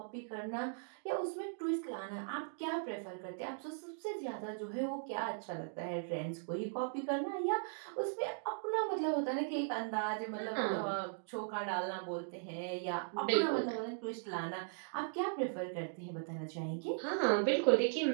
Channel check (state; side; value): silent; left; digital silence